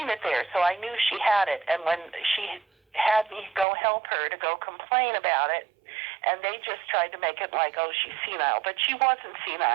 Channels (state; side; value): drops out; left; at 3.7 s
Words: it there, so I knew she had it. And when she had me go help her to go complain about it, and they just tried to make it like, oh, she's senile. But she wasn't